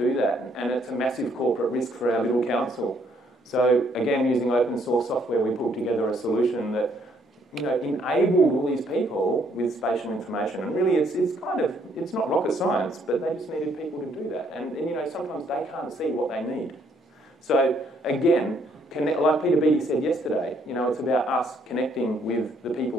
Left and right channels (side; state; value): both; normal; correlation 0.68